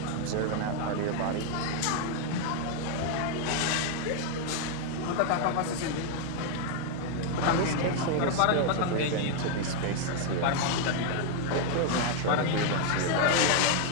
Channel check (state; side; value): different; both; correlation 0.00